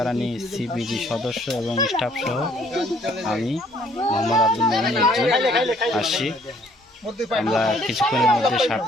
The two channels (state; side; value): normal; both; correlation 0.62